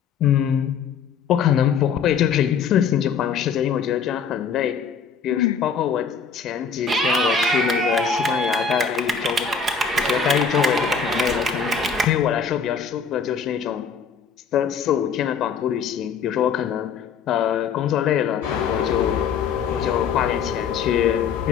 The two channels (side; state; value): right; quieter; 6.2 dB